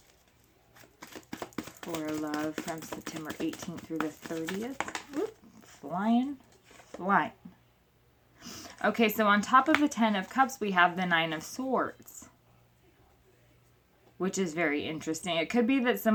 For love from September 18th through the 30th. Oop, flying. Okay, so on top of the 10 of Cups, we have the 9 of Swords, which is very interesting. It could be that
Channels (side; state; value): both; identical; correlation 1.00